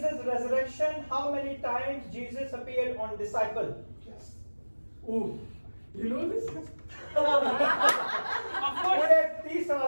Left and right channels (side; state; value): both; inverted; correlation -1.00